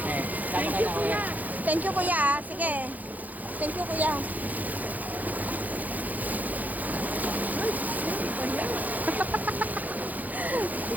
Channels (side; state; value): left; late; 0.080 ms